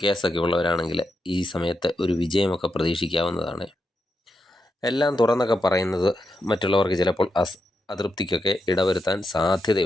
കേസൊക്കെ ഉള്ളവരാണെങ്കിൽ ഈ സമയത്ത് ഒരു വിജയമൊക്കെ പ്രതീക്ഷിക്കാവുന്നതാണ്. എല്ലാം തുറന്നൊക്കെ പറയുന്നത് മറ്റുള്ളവർക്ക് ചിലപ്പോൾ അതൃപ്തിക്കൊക്കെ ഇടവരുത്താൻ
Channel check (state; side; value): normal; both; correlation 0.85